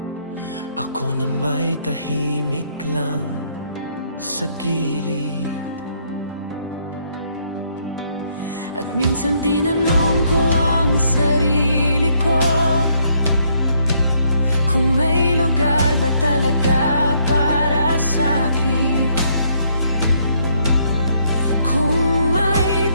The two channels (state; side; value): inverted; both; correlation -0.71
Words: ako na may tahimik lang sa gilid. At minsan tinanong ko ang sarili ko kung may lugar ba talaga para sa'kin, kung may